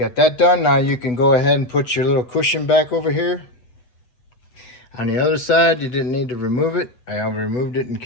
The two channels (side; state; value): right; late; 8.1 ms